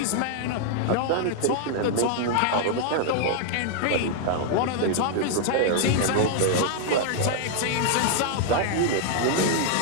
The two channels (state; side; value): different; both; correlation -0.01